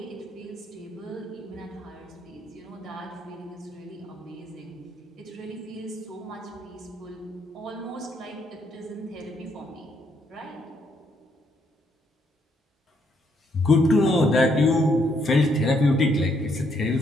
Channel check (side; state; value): both; normal; correlation 0.73